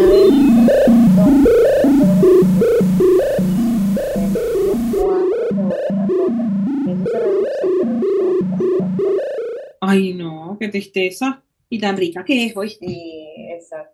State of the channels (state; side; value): identical; both; correlation 1.00